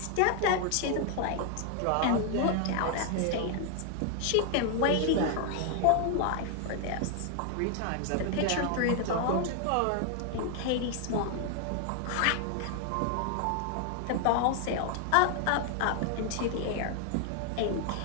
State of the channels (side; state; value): both; different; correlation 0.00